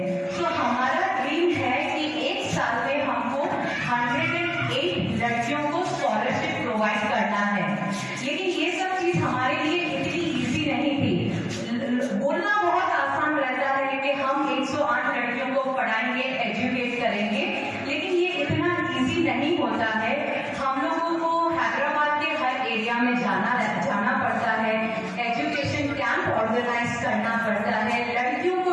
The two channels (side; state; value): both; identical; correlation 1.00